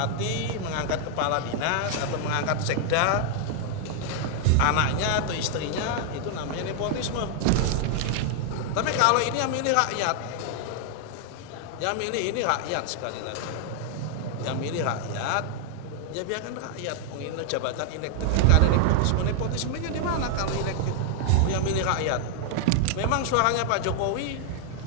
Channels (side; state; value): both; different; correlation 0.00